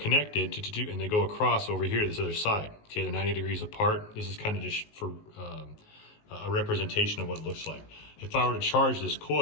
and they go across over here to this other side. Okay, they're 90 degrees apart. This is kind of just for a representation of what it looks like. If I were to charge this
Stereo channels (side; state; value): right; late; 19 ms